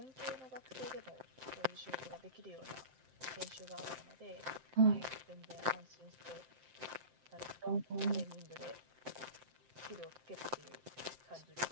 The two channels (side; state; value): left; late; 7.7 ms